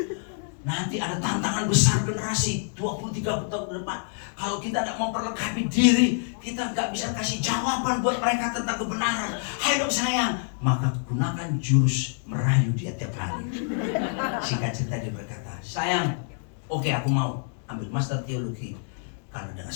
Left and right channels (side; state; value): right; silent; 60 dB below the other